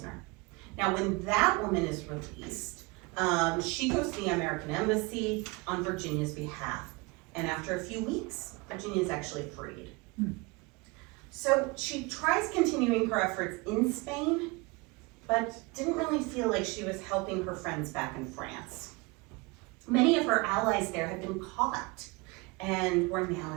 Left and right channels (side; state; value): left; quieter; 25.9 dB